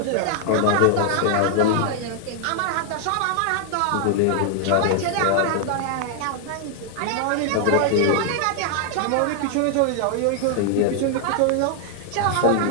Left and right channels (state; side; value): different; both; correlation 0.00